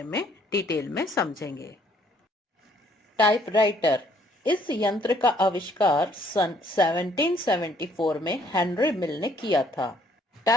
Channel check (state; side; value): normal; both; correlation 0.64